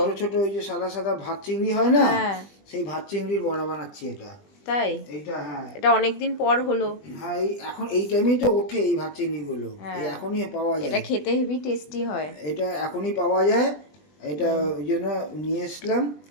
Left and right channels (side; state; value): right; late; 20 ms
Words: ছোট ছোট ওই যে সাদা সাদা ভাত চিংড়ি হয় না, হ্যাঁ। সেই ভাত চিংড়ির বড়া বানাচ্ছি এটা। তাই? এইটা হ্যাঁ। এটা অনেকদিন পর হলো। হ্যাঁ, এখন এই টাইমেই তো ওঠে এই ভাত চিংড়িগুলো, এই হ্যাঁ, এখনই পাওয়া এটা যায়। খেতে হেভি টেস্টি হয়। এটা এখনই পাওয়া যায়। এটা ওই জন্য নিয়ে এসলাম,